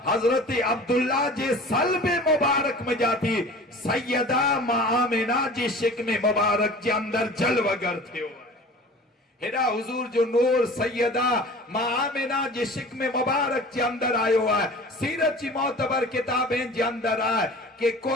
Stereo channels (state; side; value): normal; both; correlation 0.41